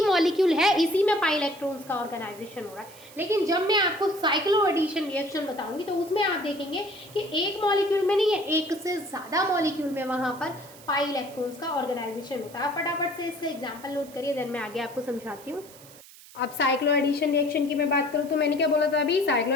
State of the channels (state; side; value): noise; right; hiss, 21 dB below the sound